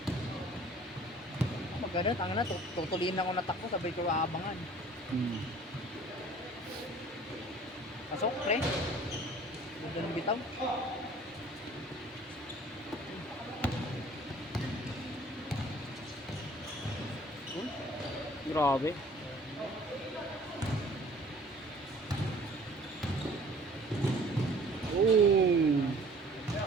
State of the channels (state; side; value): normal; both; correlation 0.51